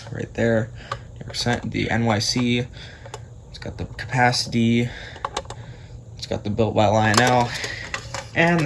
right there. The NYC. It's got the capacity. It's got the built by Lionel, and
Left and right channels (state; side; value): identical; both; correlation 1.00